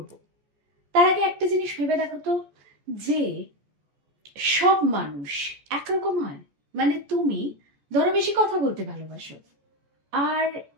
তার আগে একটা জিনিস ভেবে দেখো তো, যে সব মানুষ একরকম হয়? মানে তুমি ধরো বেশি কথা বলতে ভালোবাসো, আর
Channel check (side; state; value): left; late; 14 ms